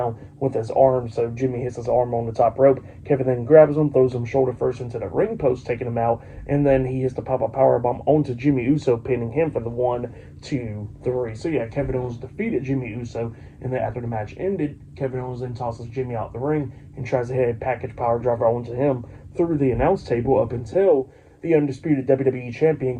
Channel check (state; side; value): identical; both; correlation 1.00